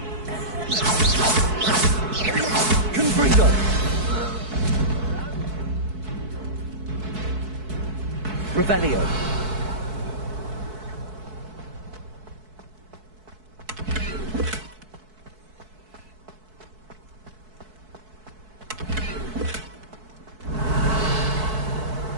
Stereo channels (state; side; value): late; left; 4.6 ms